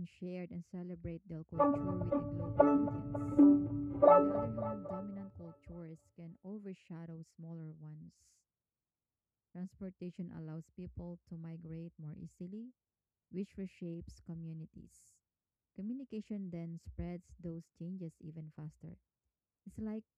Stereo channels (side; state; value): both; identical; correlation 1.00